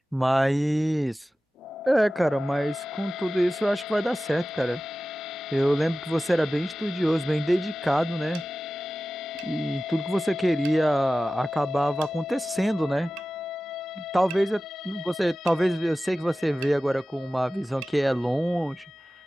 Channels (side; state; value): both; normal; correlation 0.95